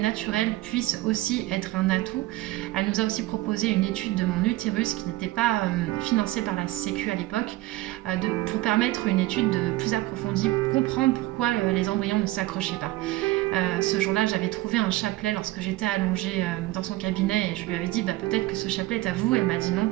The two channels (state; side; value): quieter; left; 17.7 dB